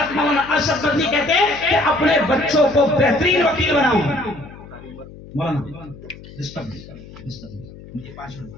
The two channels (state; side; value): noise; left; hum, 18 dB below the sound